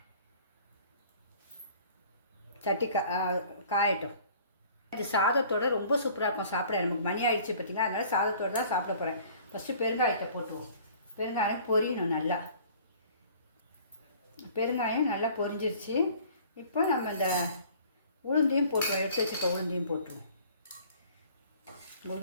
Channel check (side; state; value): both; inverted; correlation -0.51